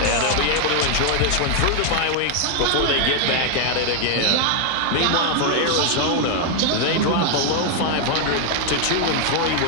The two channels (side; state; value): both; different; correlation 0.00